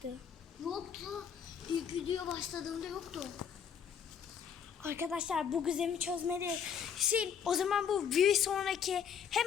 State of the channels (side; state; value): right; quieter; 7.6 dB